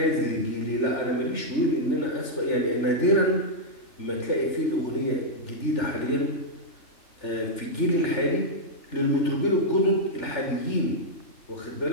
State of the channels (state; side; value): late; right; 3.4 ms